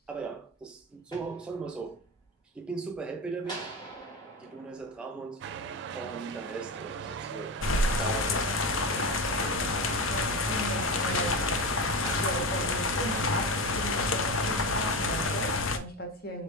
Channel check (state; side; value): normal; both; correlation 0.21